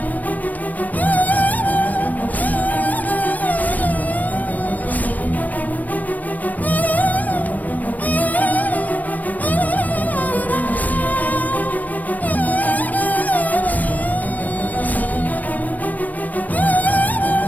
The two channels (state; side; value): late; right; 0.079 ms